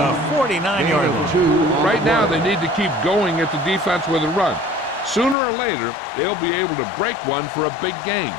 49-yard line. Right now, they need to keep going at the defense with a run. Sooner or later, they'll be able to break one for a big gain.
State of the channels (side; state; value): right; drops out; at 5.4 s